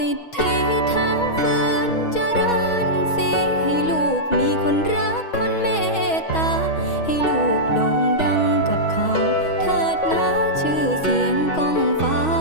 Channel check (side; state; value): right; late; 6.3 ms